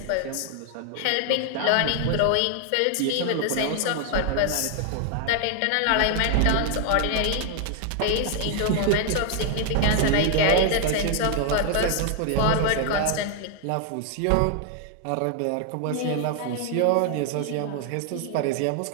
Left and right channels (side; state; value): both; different; correlation 0.00